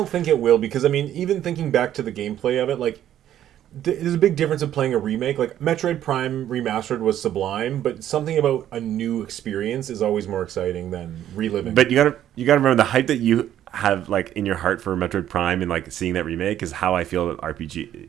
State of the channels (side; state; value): left; quieter; 11.4 dB